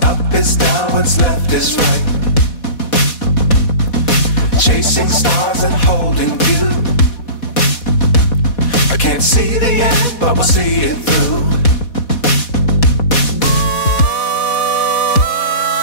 up is down, what's left is right. Chasing stars and holding you. I can't see the end, but we'll see it through.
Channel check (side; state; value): right; late; 4.1 ms